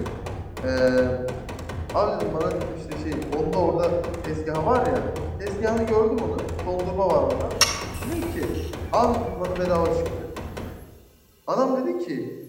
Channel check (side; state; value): both; identical; correlation 1.00